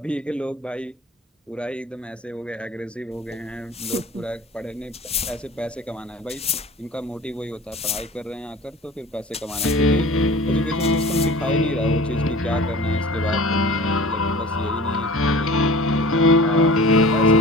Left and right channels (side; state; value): both; normal; correlation 0.41